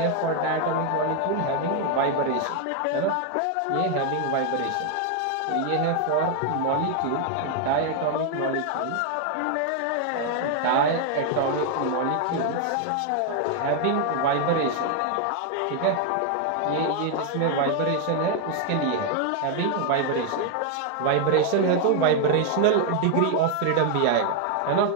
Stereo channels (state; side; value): different; both; correlation 0.00